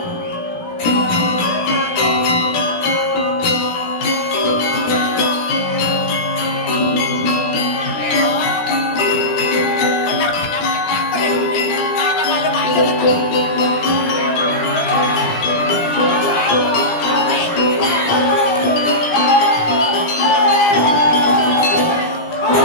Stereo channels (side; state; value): right; late; 17 ms